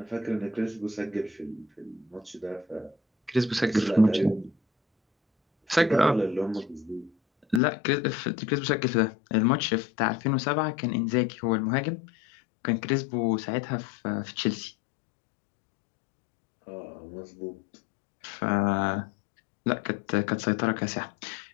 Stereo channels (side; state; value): right; drops out; at 7.6 s